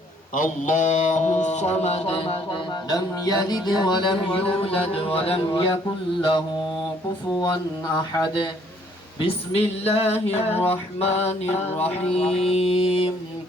الله الصمد لم يلد ولم يولد ولم يكن له كفوا أحد. بسم الله الرحمن الرحيم.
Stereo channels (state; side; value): normal; both; correlation 0.63